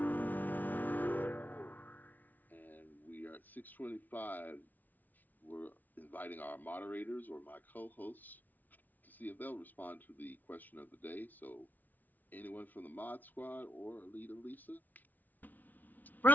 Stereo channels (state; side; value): late; right; 0.081 ms